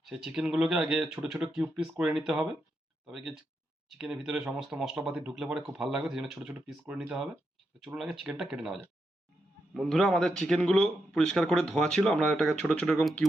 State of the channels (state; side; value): normal; both; correlation 0.84